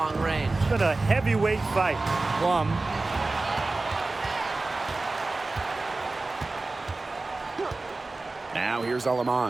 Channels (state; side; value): quieter; left; 3.3 dB